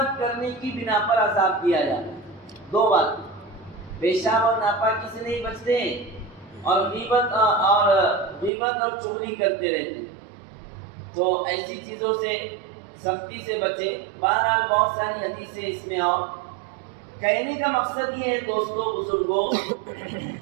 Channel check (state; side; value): drops out; left; at 8.5 s